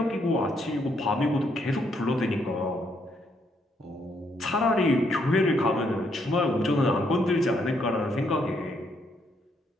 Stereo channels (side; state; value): both; normal; correlation 0.74